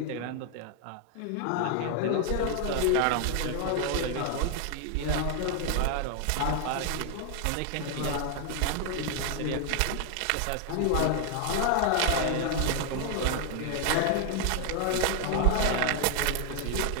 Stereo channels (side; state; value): both; different; correlation 0.00